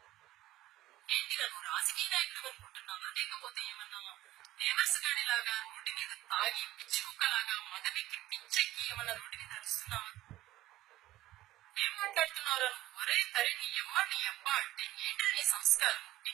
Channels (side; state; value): left; quieter; 15.6 dB